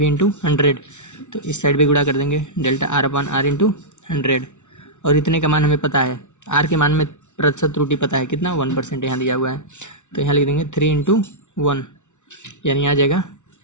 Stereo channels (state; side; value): late; right; 0.84 ms